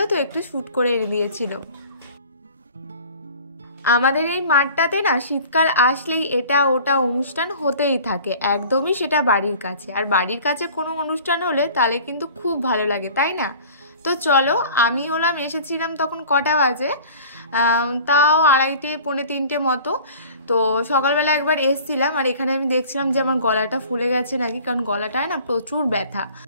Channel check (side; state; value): both; inverted; correlation -0.46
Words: তো একটু শ্যুট করে এনে দিয়েছিল। আমাদের এই মাঠটাতে না শীতকাল আসলেই এটা ওটা অনুষ্ঠান হতেই থাকে, একদমই সেটা বাড়ির কাছে। আর বাড়ির কাছে কোনো অনুষ্ঠান হলে তাহলে কিন্তু খুব ভালো লাগে, তাই না? তো চলো, আমি এসেছিলাম তখন কটা বাজে, তাও 2:30 পৌনে 3টে মতো। তো সকালবেলা একবার এসছিলাম, আর এখানে আমি দেখছিলাম যে আমার গলাটা ফুলে গেছে নাকি, কারণ গলাটায় না প্রচুর ব্যথা।